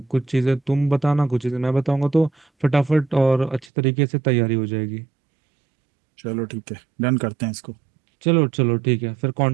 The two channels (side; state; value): left; drops out; at 3.7 s